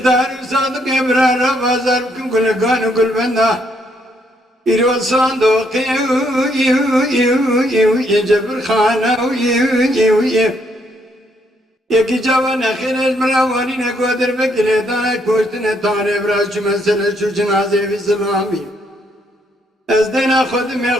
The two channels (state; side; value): normal; both; correlation 0.72